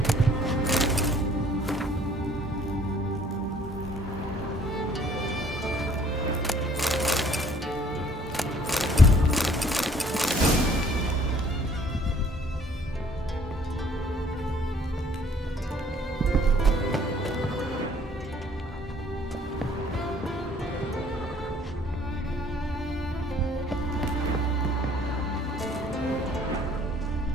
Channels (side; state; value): both; normal; correlation 0.58